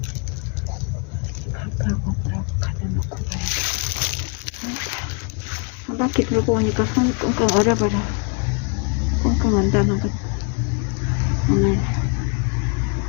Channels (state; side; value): quieter; right; 36.4 dB